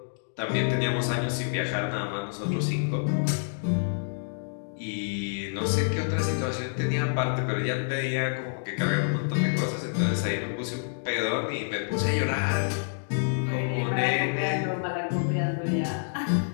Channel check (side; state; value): right; silent; digital silence